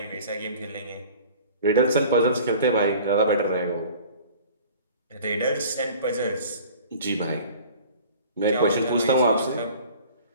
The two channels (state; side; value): inverted; both; correlation -0.45